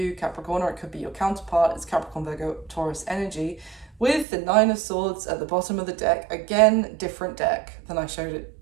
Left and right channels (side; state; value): left; drops out; at 4.2 s